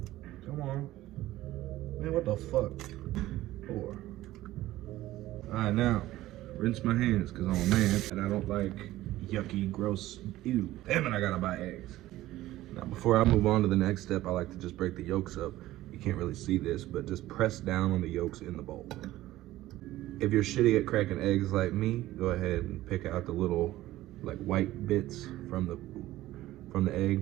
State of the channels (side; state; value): left; quieter; 15.8 dB